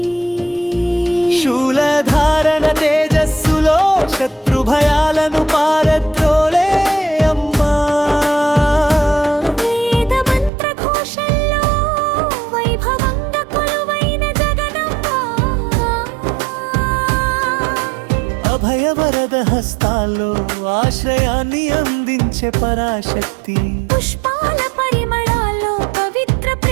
శూలధారణ తేజస్సులో శత్రు భయాలను పారద్రోలే అమ్మా వేద మంత్ర ఘోషల్లో వైభవంగా కొలువైన జగదంబ అభయవరద హస్తాల్లో ఆశ్రయాన్ని అందించే పరాశక్తి పుష్పాల పరిమళాల్లో పవిత్ర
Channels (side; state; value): left; drops out; at 10.5 s